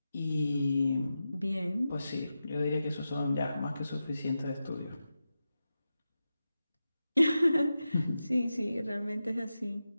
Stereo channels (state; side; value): inverted; both; correlation -0.91